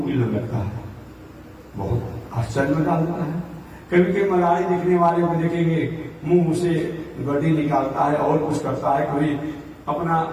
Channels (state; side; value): identical; both; correlation 1.00